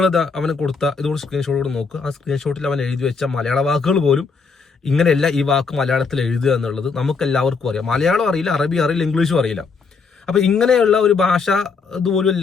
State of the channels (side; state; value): right; quieter; 4.9 dB